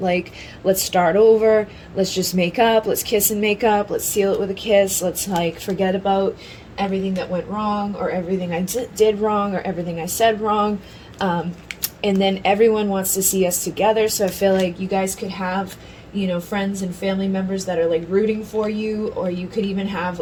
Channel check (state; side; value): identical; both; correlation 1.00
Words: Like, let's start over. Let's just make up. Let's kiss and make up. Let's seal it with a kiss. Let's like forget about everything that went wrong, or everything I did wrong, or everything I said wrong. And then everyone wants to see us together. So I feel like you guys could have, you know, friends and family members that are like rooting for you, or you could even have